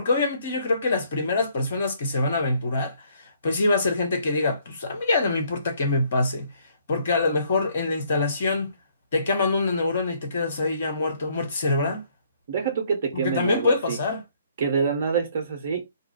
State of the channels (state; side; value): inverted; both; correlation -0.65